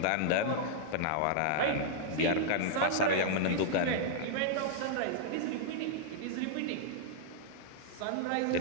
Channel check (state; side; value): different; both; correlation -0.01